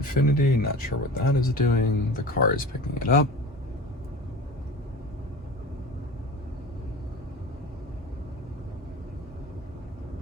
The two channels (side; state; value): both; normal; correlation 0.36